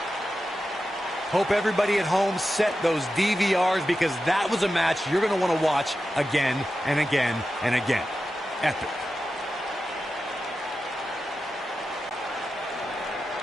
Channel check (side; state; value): both; normal; correlation 0.91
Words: Hope everybody at home set those DVRs, because that was a match you're going to want to watch again and again and again. Epic.